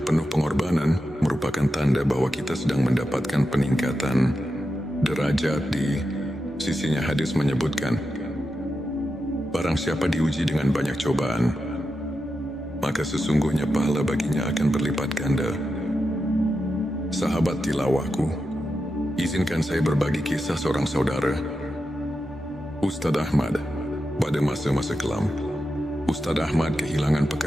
penuh pengorbanan merupakan tanda bahwa kita sedang mendapatkan peningkatan derajat di sisinya. Hadis menyebutkan, barang siapa diuji dengan banyak cobaan, maka sesungguhnya pahala baginya akan berlipat ganda. Sahabat tilawahku, izinkan saya berbagi kisah seorang saudara, Ustadz Ahmad. Pada masa-masa kelam, Ustadz Ahmad kehilangan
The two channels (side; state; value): both; normal; correlation 0.89